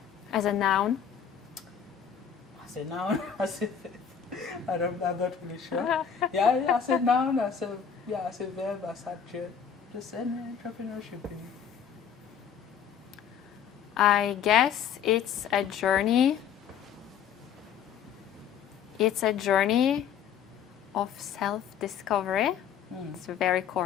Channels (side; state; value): right; quieter; 8.0 dB